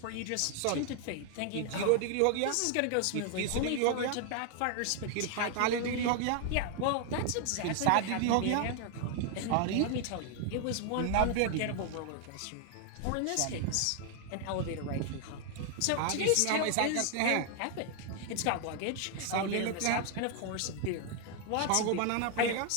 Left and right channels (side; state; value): both; different; correlation 0.00